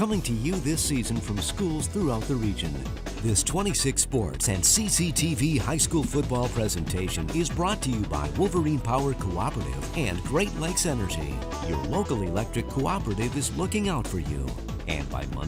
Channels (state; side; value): identical; both; correlation 1.00